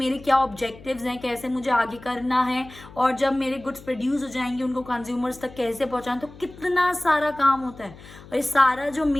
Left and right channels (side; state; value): left; noise; hum, 19 dB below the sound